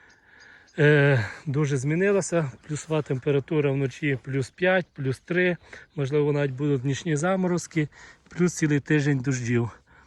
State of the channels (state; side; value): identical; both; correlation 1.00